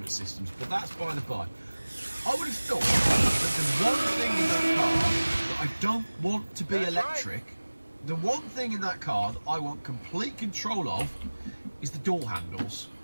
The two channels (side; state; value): both; inverted; correlation -1.00